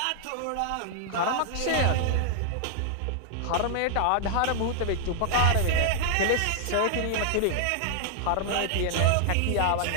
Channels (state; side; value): different; both; correlation -0.01